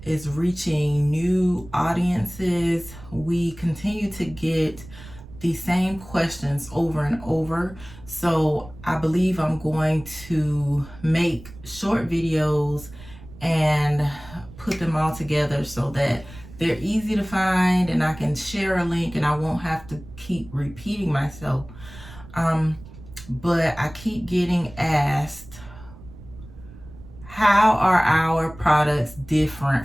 is reaching new audiences, we continue to get the same questions over and over. So I believe I'm going to make short videos and put them all together so that they're easy to find and I can share a link and I won't have to keep repeating myself. But I keep getting asked, how are our products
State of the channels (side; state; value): right; noise; rumble, 18 dB below the sound